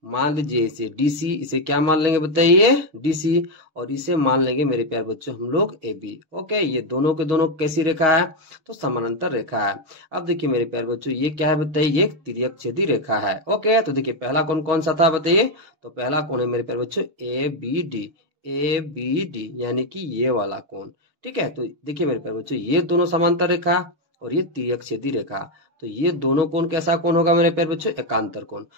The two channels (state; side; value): late; left; 6.3 ms